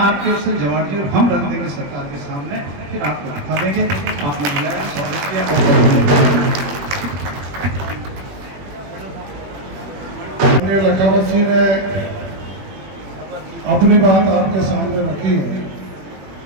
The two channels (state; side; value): late; left; 21 ms